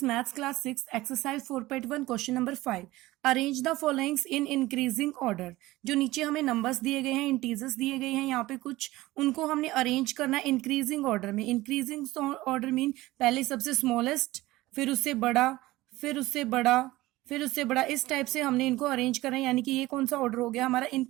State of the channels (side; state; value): left; quieter; 18.3 dB